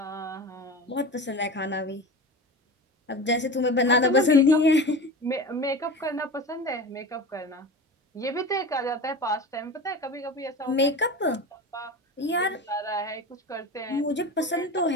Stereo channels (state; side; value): normal; both; correlation 0.31